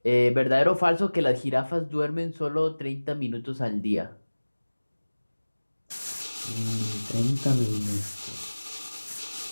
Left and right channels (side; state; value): both; inverted; correlation -1.00